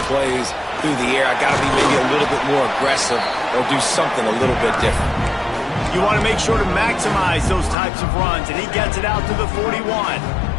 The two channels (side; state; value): right; drops out; at 7.8 s